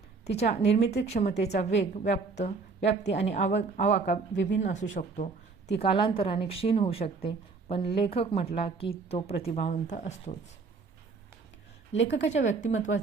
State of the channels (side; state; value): left; quieter; 4.4 dB